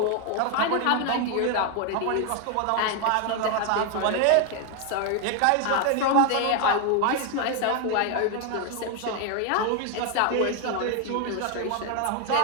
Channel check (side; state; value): both; different; correlation 0.01